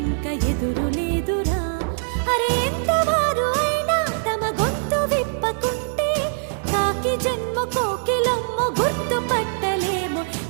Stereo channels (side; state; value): left; silent; digital silence